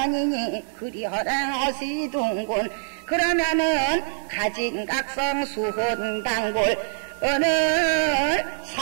그리 허랑허시둔군 그러면은 가진각성 수혼단골 오늘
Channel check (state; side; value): silent; left; digital silence